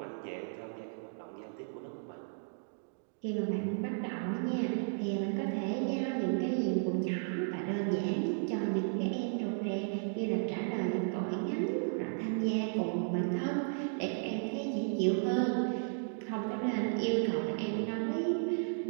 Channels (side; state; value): left; silent; digital silence